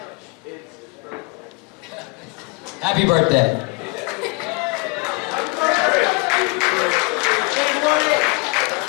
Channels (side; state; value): right; quieter; 28.7 dB